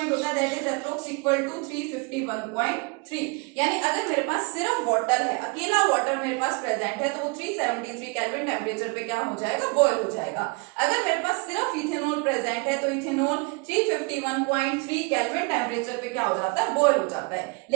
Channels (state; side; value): quieter; left; 29.9 dB